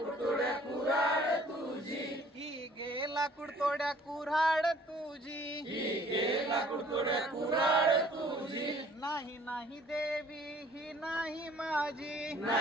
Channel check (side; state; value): both; normal; correlation 0.56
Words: तोड्या कुऱ्हाड तुझी। ही घे लाकूड तोड्या कुऱ्हाड तुझी। ही घे लाकूड तोड्या कुऱ्हाड तुझी। नाही नाही देवी ही नाही माझी।